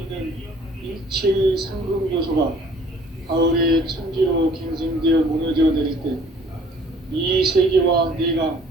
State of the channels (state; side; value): normal; both; correlation 0.55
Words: 일체의 상금 요소가 가을의 천지로 갱생되어 무너져 내릴 때 이 세계와 내가